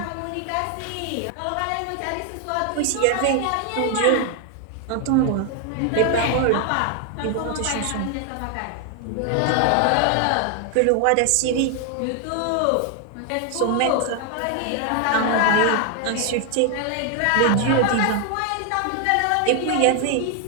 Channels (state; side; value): different; both; correlation 0.00